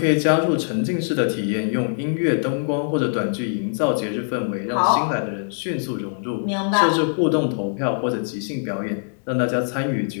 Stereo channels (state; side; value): silent; right; digital silence